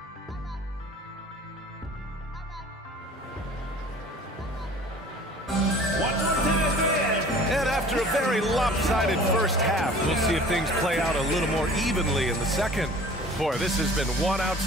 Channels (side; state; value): both; normal; correlation 0.46